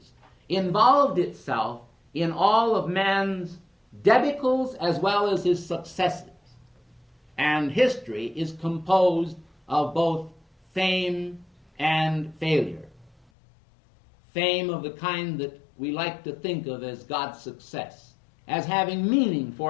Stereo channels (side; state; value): right; drops out; at 13.2 s